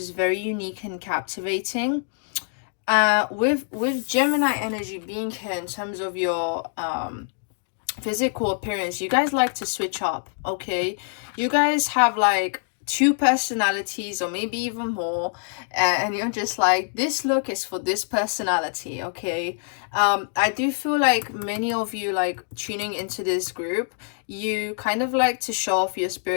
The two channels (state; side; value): silent; right; digital silence